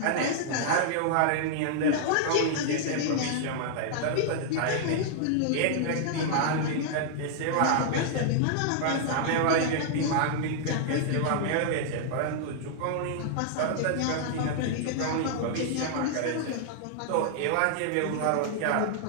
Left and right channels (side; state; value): both; different; correlation -0.01